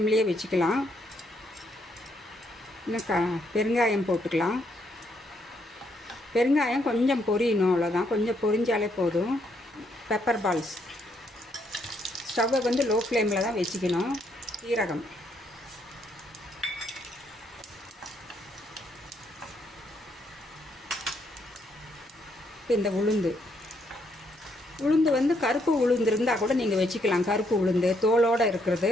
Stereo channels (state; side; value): normal; both; correlation 0.73